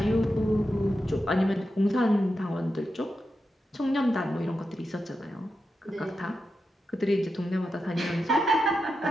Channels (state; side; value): normal; both; correlation 0.88